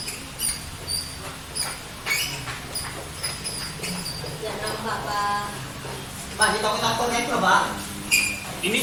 Dan nambah, Pak. Pak, di toko-tokonya itu loh, Pak.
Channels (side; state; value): both; identical; correlation 1.00